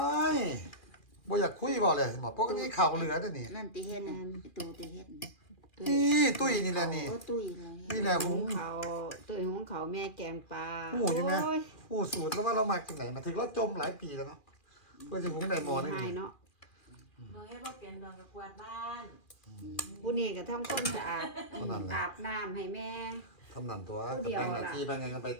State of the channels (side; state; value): right; late; 2.4 ms